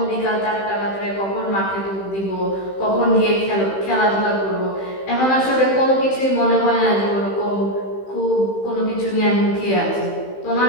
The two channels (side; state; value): right; late; 15 ms